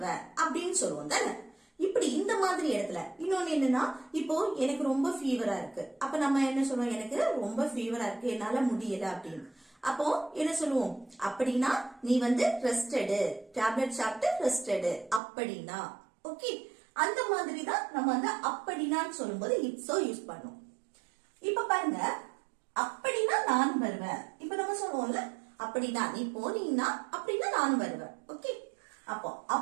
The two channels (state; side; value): drops out; left; at 15.2 s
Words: அப்படின்னு சொல்லுவோம் தானே. இப்படி இந்த மாதிரி இடத்துல இன்னொன்னு என்னன்னா, இப்போ எனக்கு ரொம்ப ஃபீவரா இருக்கு. அப்ப நம்ம என்ன சொல்லுவோம், எனக்கு ரொம்ப ஃபீவரா இருக்கு, என்னால முடியல அப்படின்னு. அப்போ என்ன சொல்லுவோம், அப்படின்னா நீ ரெஸ்ட் எடு, டேப்லெட் சாப்பிட்டு ரெஸ்ட் எடு அப்படின்னா. ஓகே, அந்த மாதிரி தான் நம்ம அப்படின்னான்னு சொல்லும்போது இட்ஸோ யூஸ் பண்ணும். இப்ப பாருங்க, அப்படின்னா நானும் வருவேன். இப்ப நம்ம சொல்லுவோம்ல, அப்படின்னா நீ போனீங்கன்னா அப்படின்னா நானும் வருவேன். ஓகே, அப்போ